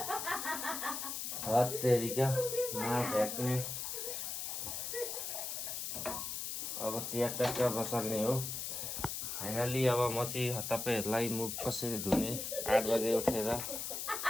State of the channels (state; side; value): noise; left; hiss, 4 dB below the sound